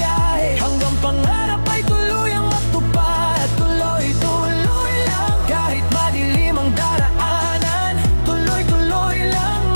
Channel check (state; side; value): inverted; both; correlation -1.00